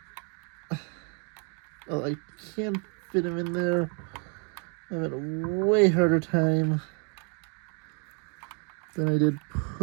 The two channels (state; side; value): quieter; left; 38.0 dB